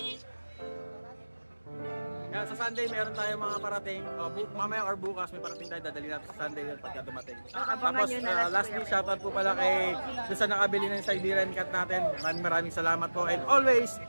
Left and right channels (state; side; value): inverted; both; correlation -1.00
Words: Yan, sa Sunday, meron tayong mga parating. Mamaya or bukas, may parating tayo. Dadali natin sa Sunday yun pagka dumating. Tapos, lastly, shoutout po pala kay doon sa nakabili ng Siberian Cat natin. Maraming salamat po. And always,